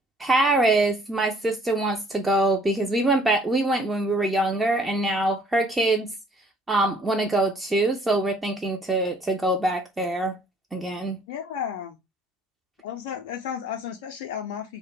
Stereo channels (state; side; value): normal; both; correlation 0.58